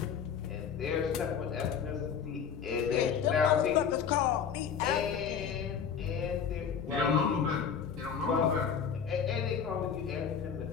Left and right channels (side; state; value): right; quieter; 7.2 dB